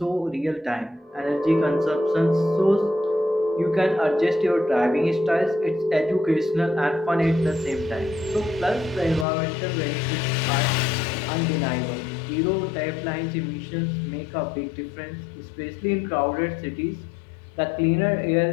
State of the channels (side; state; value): right; drops out; at 9.2 s